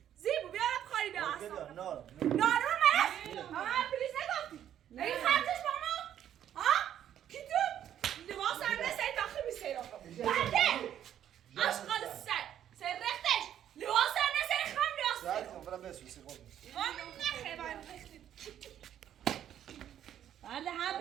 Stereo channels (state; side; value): quieter; left; 10.5 dB